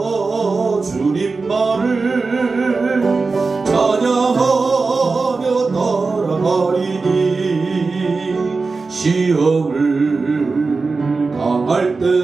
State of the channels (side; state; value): left; quieter; 4.1 dB